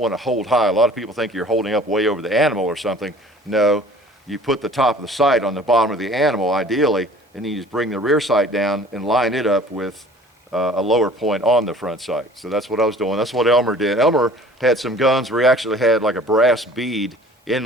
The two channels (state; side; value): normal; both; correlation 0.48